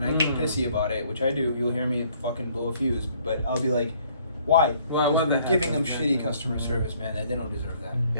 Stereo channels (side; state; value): both; inverted; correlation -0.62